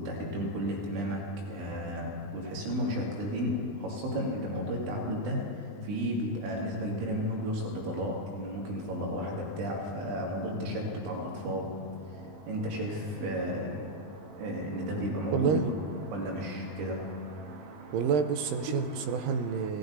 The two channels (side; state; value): left; late; 20 ms